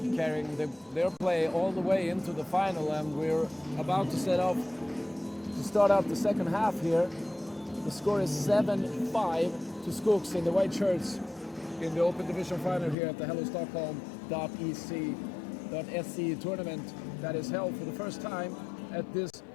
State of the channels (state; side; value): drops out; right; at 13.0 s